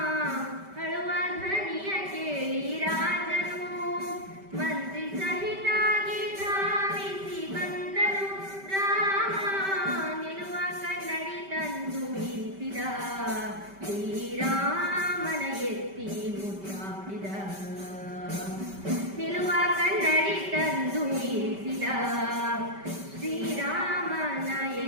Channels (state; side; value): late; left; 5.1 ms